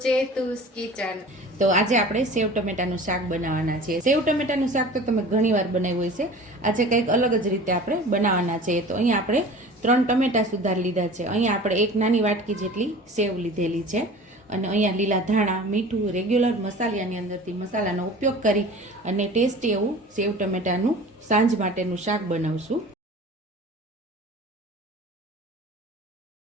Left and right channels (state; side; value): normal; both; correlation 0.41